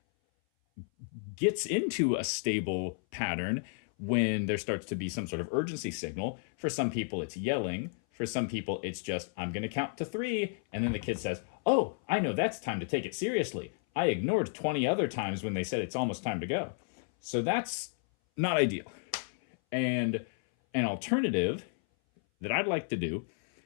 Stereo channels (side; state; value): right; silent; 56 dB below the other